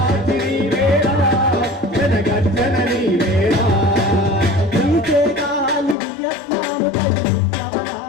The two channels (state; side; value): drops out; right; at 6.0 s